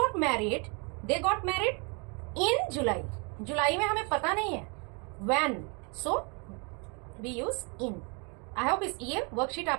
मैरिड इन जुलाई। जुलाई में हमें पता नहीं है when, so we use in. I hope ये वर्कशीट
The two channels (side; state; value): left; quieter; 33.5 dB